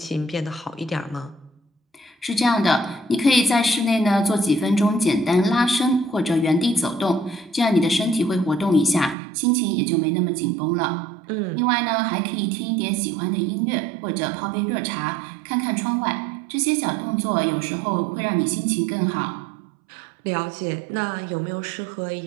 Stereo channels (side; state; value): left; drops out; at 9.2 s